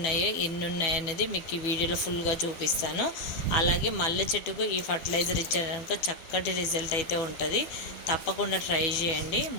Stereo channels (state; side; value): late; right; 12 ms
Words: ఎన్ని ఉన్నాయో అనేది మీకు ఈ వీడియోలో ఫుల్గా చూపిస్తాను. అలాగే మల్లె చెట్టుకు ఈ ఫర్టిలైజర్ ఇచ్చారనుకో చక్కటి రిజల్ట్ అయితే ఉంటుంది. తప్పకుండా ట్రై చేయండి.